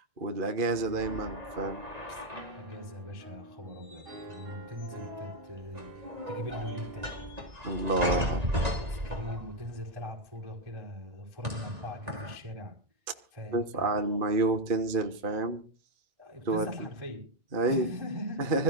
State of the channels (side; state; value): left; late; 1.9 ms